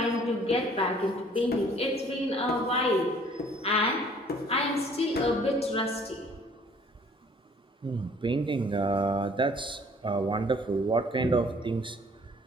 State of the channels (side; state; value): both; normal; correlation 0.57